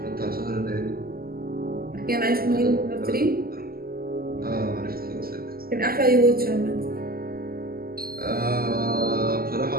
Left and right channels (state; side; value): late; left; 0.43 ms